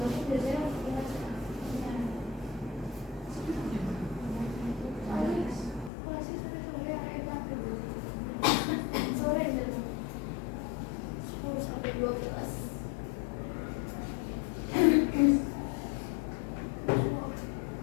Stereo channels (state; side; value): drops out; right; at 5.9 s